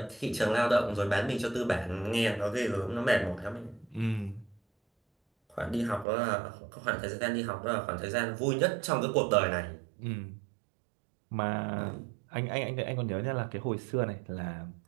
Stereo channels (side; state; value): left; drops out; at 6.1 s